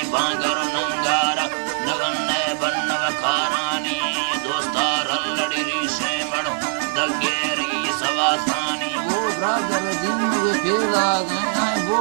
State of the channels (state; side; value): silent; left; digital silence